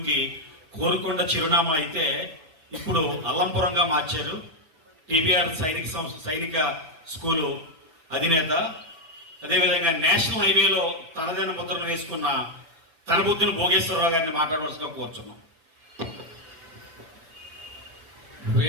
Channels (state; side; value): late; left; 6.0 ms